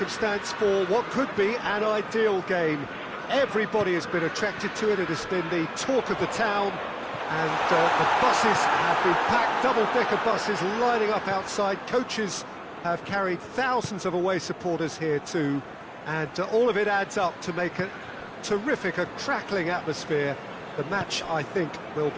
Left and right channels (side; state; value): both; identical; correlation 1.00